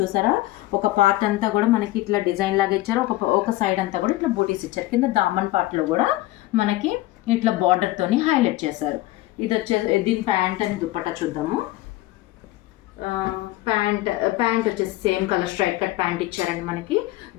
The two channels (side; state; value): right; quieter; 17.3 dB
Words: ఒక పార్ట్ అంతా కూడా మనకి ఇట్లా డిజైన్ లాగా ఇచ్చారు. ఒక సైడ్ అంతా కూడా ఇట్లా బూటీస్ ఇచ్చారు. కింద దామన్ పార్ట్లో కూడా మనకి ఇట్లా బార్డర్తోని హైలైట్ చేశారు. ఇది దీని ప్యాంట్ అని దుప్పట్టా చూద్దాము. ప్యాంట్ వచ్చేసి same colour straight cut pant ఇచ్చారండి. మనకి